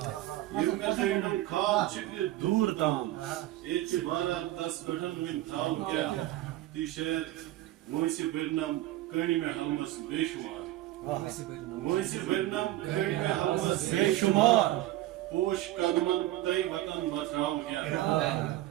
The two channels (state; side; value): quieter; left; 15.5 dB